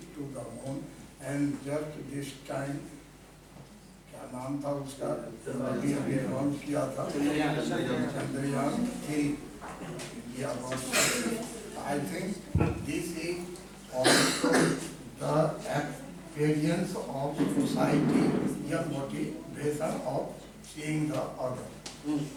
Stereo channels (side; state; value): both; identical; correlation 1.00